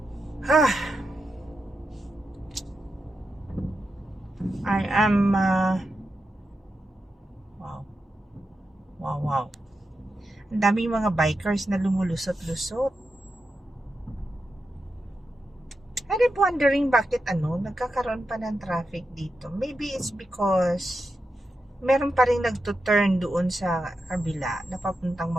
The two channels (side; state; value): both; normal; correlation 0.88